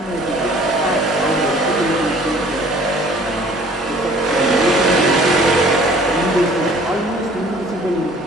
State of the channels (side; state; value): both; normal; correlation 0.53